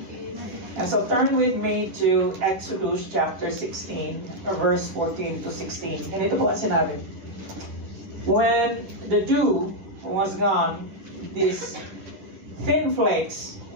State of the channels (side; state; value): left; late; 11 ms